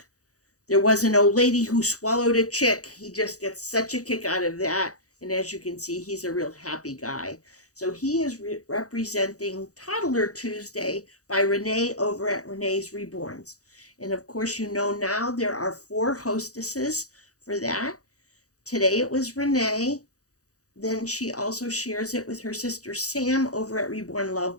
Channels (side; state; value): right; late; 0.66 ms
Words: There was an old lady who swallowed a chick. He just gets such a kick out of that, and as you can see, he's a real happy guy. So he is representing Toddler Tuesday by Renee over at Renee's Reborns. And of course, you know now there are 4 hostesses for that. Today it was Renee. Then she also shares it with her sister Sam over at Reborn